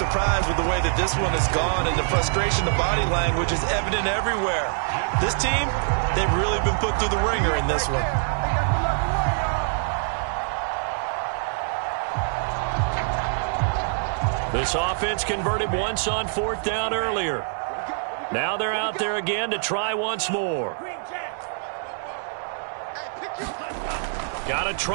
with the way that this one has gone, and the frustration, the body language is evident everywhere. This team, they've really been put through the ringer in this one. This offense converted once on 4th down earlier. Now they're out there again to try once more. Got to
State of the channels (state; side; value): silent; left; digital silence